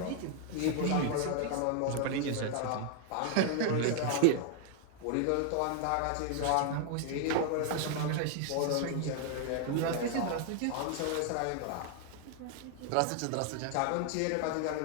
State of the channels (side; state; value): both; different; correlation 0.00